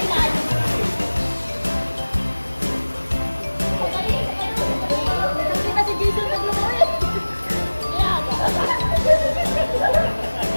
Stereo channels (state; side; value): inverted; both; correlation -1.00